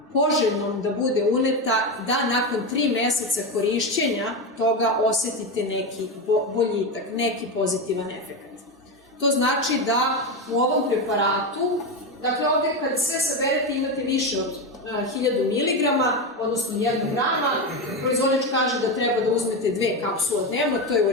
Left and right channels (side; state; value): both; normal; correlation 0.14